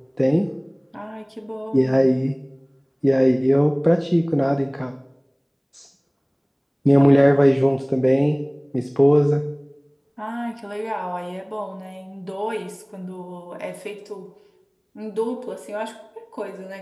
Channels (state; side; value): identical; both; correlation 1.00